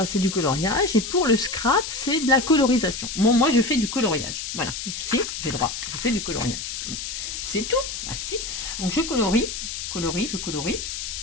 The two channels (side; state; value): left; noise; hiss, 6 dB below the sound